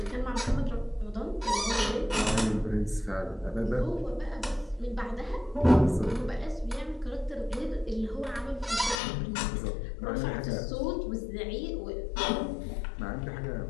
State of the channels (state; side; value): drops out; right; at 9.0 s